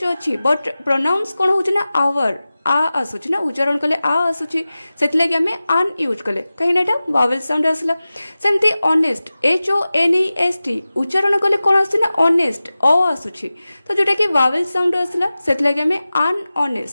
अच्छी बट प्रोनाउंस कौन होची ना आवर आ आसुची ना उच्चारण कले आ आसुची सेतले कि हमें आन यूज कले कहीं ना एटा वावेल साउंड आसला सेमती honest h o n e s t उच्चारण कले कोन आसुची ना ऑनेस्ट अ आसुची तो जोटा कि वावेल साउंड आसला सेतले कि हमें आन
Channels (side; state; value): both; inverted; correlation -0.96